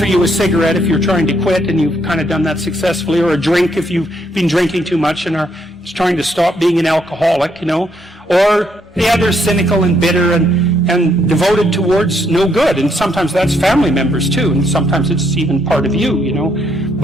you a cigarette if you're trying to quit and you've kind of done that successfully, or a drink if you've been drinking too much and are trying to stop being an alcoholic, or they're cynical and bitter and devoted towards no good. And sometimes that's family members too, and sometimes it's even part of you,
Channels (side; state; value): both; normal; correlation 0.73